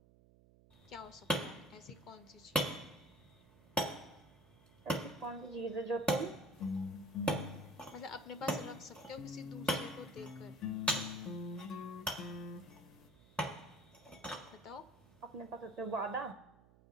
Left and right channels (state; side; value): noise; right; hum, 25 dB below the sound